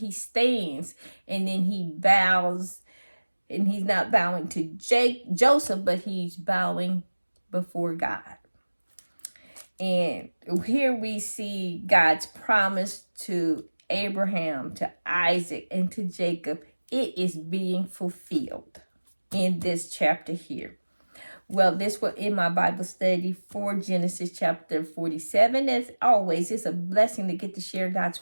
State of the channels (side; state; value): both; inverted; correlation -1.00